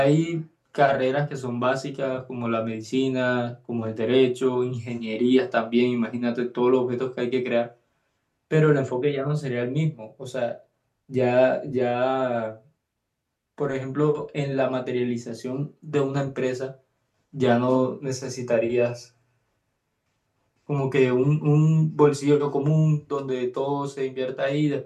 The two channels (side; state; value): both; identical; correlation 1.00